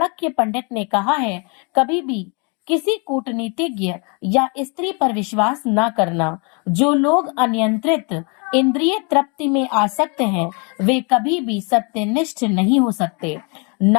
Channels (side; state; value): right; quieter; 33.8 dB